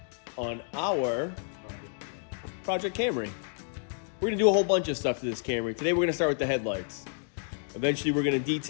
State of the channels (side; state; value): right; silent; digital silence